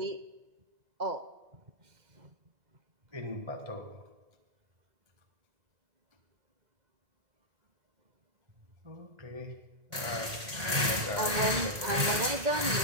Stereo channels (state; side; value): late; left; 1.8 ms